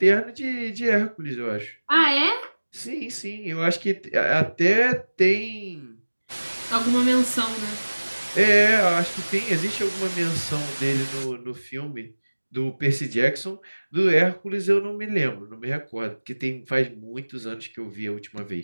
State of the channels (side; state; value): both; inverted; correlation -1.00